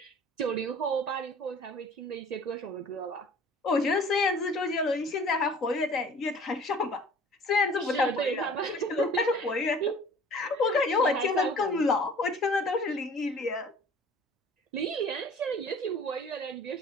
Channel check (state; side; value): normal; both; correlation 0.48